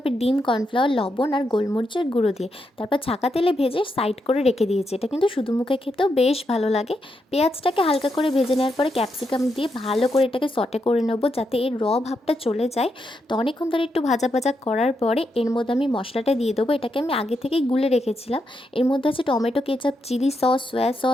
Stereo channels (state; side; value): normal; both; correlation 0.83